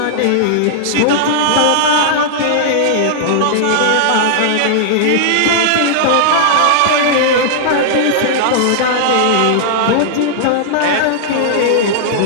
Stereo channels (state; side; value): different; both; correlation -0.01